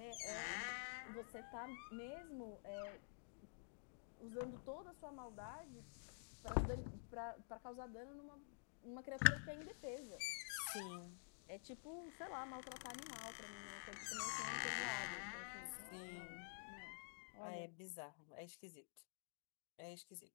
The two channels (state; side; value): silent; right; digital silence